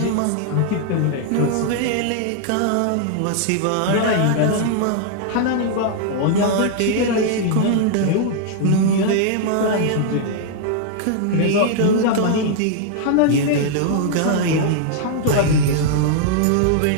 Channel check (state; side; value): different; both; correlation -0.01